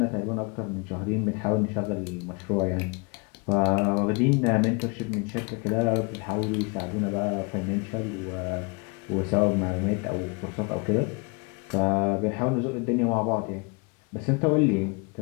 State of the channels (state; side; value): quieter; right; 31.2 dB